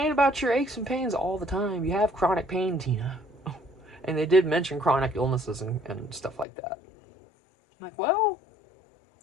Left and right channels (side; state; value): right; drops out; at 6.5 s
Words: about your aches and pains all the time. You have chronic pain, Tina. And they did mention chronic illnesses and stuff like that. I'm like, well,